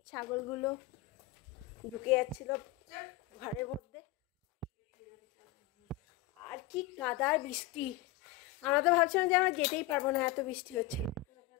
ছাগলগুলো ঢুকে যাচ্ছিল ঘরের মধ্যে। আর কি কাদার বৃষ্টি, আমরা তো ভাবছিলাম যে আমরা যেতেই পারবো না, এত বৃষ্টি হচ্ছে।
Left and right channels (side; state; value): right; quieter; 14.8 dB